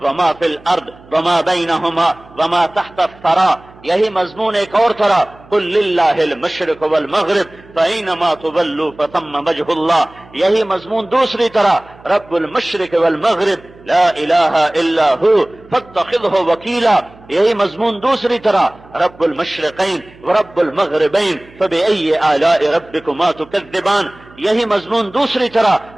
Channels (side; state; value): right; noise; hum, 24 dB below the sound